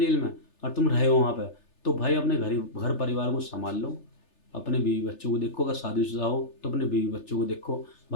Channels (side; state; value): right; late; 3.3 ms